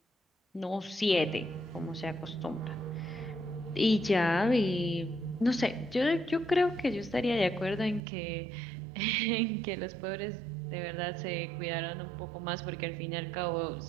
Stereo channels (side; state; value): left; drops out; at 8.0 s